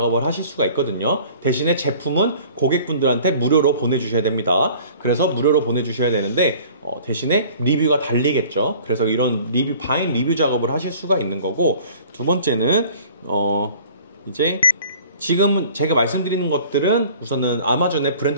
하실 수가 있거든요. 대신에 제품은 고객분들한테 무료로 보내주셔야 됩니다. 그래서 무료로 보내주셔야 되는데 대신에 리뷰가 달리겠죠. 그래서 이런 바인 리뷰 작업을 하실 수가 있는 거고, 두 번째는 이제 지금 제가 말씀드리는 것들은 우선은 아마존에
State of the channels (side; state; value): both; inverted; correlation -0.49